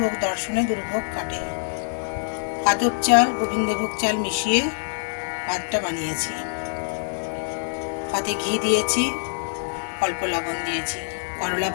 দর্শনে দুর্ভোগ কাটে। আদব চাল, গোবিন্দভোগ চাল মিশিয়ে ভাতটা বানিয়েছি। ভাতে ঘি দিয়েছি, অল্প লবণ দিয়েছি। করলা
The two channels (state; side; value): silent; right; 62 dB below the other